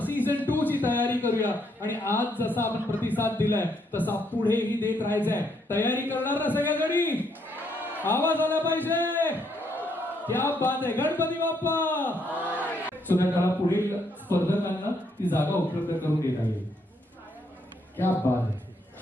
season 2 ची तयारी करूया. आणि आज जसा आपण प्रतिसाद दिलाय तसा पुढेही देत राहायचंय. तयारी करणार ना सगळ्यांनी? आवाज आला पाहिजे. क्या बात आहे. गणपती बाप्पा. सुद्धा पुढील स्पर्धकांना ती जागा उपलब्ध करून देता येईल. क्या बात आहे.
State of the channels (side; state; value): both; normal; correlation 0.73